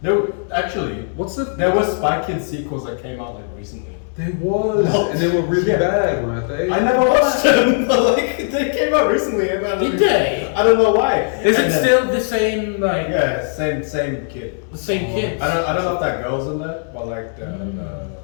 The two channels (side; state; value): right; silent; digital silence